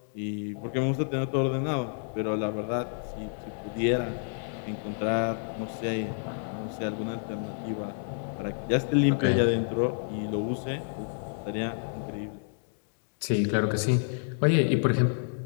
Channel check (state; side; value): silent; right; digital silence